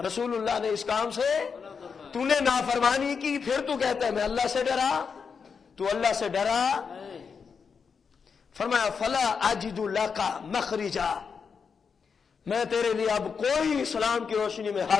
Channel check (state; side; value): quieter; right; 5.9 dB